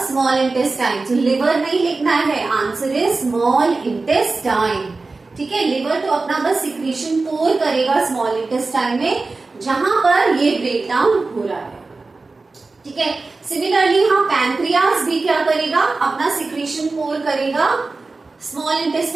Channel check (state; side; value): quieter; left; 3.7 dB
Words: small intestine. तो लिवर नहीं लिखना है, आंसर इज स्मॉल इंटेस्टाइन। ठीक है, लिवर तो अपना बस सिक्रीशन पोर करेगा स्मॉल इंटेस्टाइन में जहां पर ये ब्रेक डाउन हो रहा है। ठीक है, सिमिलरली हाँ पैंक्रियास भी क्या करेगा, अपना सिक्रीशन पोर करेगा स्मॉल